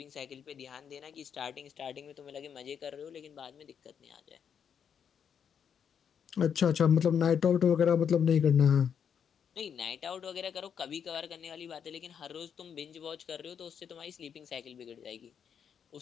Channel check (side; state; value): right; quieter; 7.7 dB